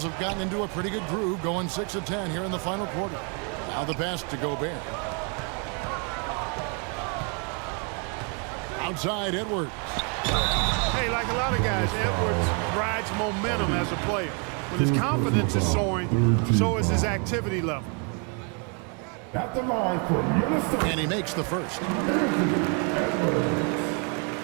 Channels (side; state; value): left; quieter; 36.5 dB